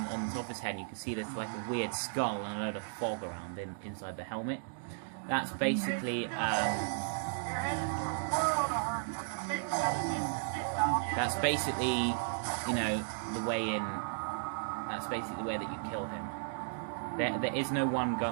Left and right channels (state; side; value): silent; left; digital silence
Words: top of his head, and you can see there's like a weird skull and a load of fog around inside the helmet. That's basically, you know, the way in. That's basically the way that you kill him. There is no one